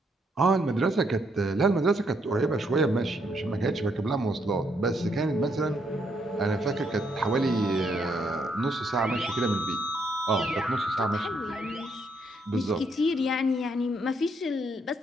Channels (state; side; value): normal; both; correlation 0.74